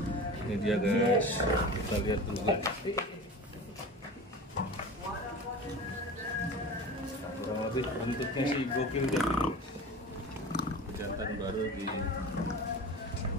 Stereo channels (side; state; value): both; normal; correlation 0.34